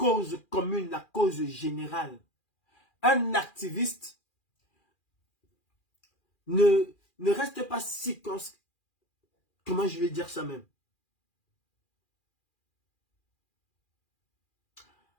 commune, la cause générale. Un activiste ne reste pas si... Comment je vais dire ça même?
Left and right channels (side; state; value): right; late; 2.4 ms